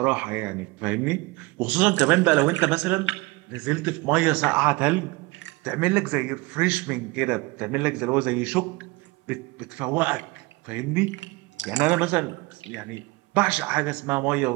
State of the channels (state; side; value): quieter; left; 23.3 dB